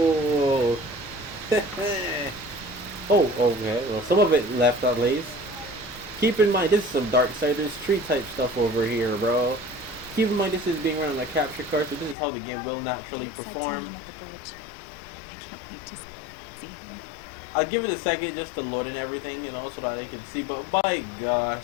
Oh, okay. Well, some of it left at least. Keep in mind, this is some Darksiders 3 type stuff over here, bro. Keep in mind, this is being run on a capture card, so this is how the game will naturally perform. I'll give it a second just to load in everything, you know, so that I can see. But by gosh,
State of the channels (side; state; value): right; drops out; at 12.2 s